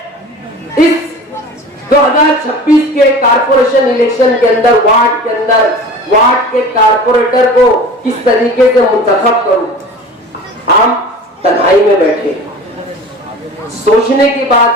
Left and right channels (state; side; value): normal; both; correlation 0.38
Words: इस 2026 के कारपोरेशन इलेक्शन के अंदर वार्ड के कारपोरेटर को किस तरीके से मुंतखब करूं। हम तन्हाई में बैठे, सोचने की बात